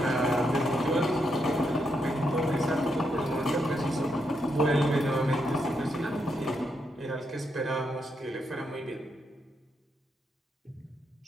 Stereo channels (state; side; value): normal; both; correlation 0.80